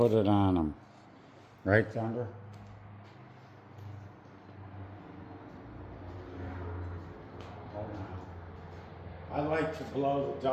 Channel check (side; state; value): both; identical; correlation 1.00